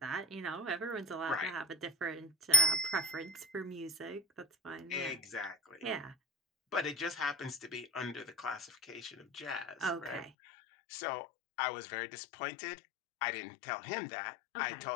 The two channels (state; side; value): drops out; right; at 10.3 s